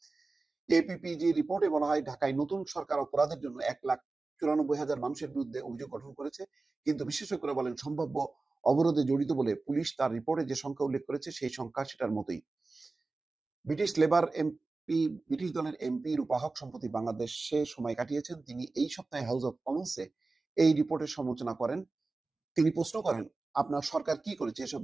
APPG রিপোর্টে বলা হয় ঢাকায় নতুন সরকার অপরাধের জন্য 1,94,000 মানুষের বিরুদ্ধে অভিযোগ গঠন করেছে। কিন্তু বিশেষজ্ঞরা বলেন সম্ভাব্য অবরোধে জড়িত বলে পুলিশ তার রিপোর্টে যে সংখ্যা উল্লেখ করেছে সেই সংখ্যা সেটার মতোই। ব্রিটিশ দলের এমপি রূপা হক সম্প্রতি বাংলাদেশে সময় কাটিয়েছেন। তিনি এই সপ্তাহে হাউস অব কমন্সে এই রিপোর্টের সমালোচনা করেন। তিনি প্রশ্ন করেন আপনার সরকার কি করেছে এসব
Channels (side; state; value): left; quieter; 3.6 dB